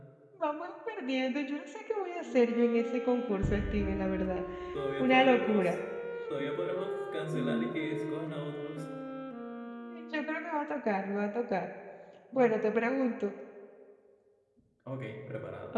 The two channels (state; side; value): identical; both; correlation 1.00